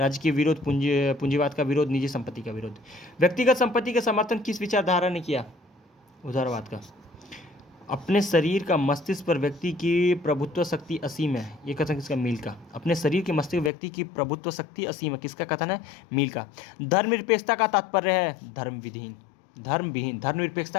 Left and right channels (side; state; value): right; drops out; at 13.7 s